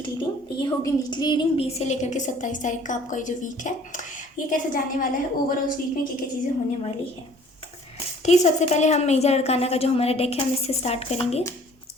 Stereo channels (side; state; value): both; normal; correlation 0.54